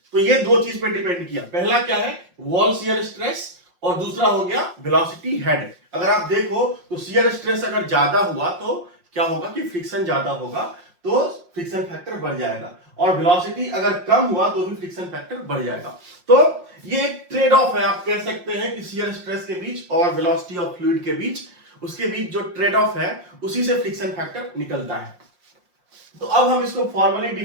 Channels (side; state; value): left; late; 5.6 ms